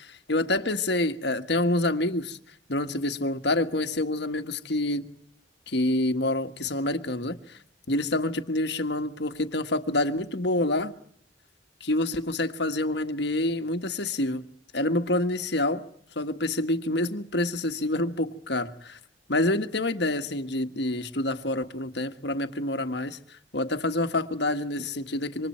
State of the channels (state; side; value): normal; both; correlation 0.19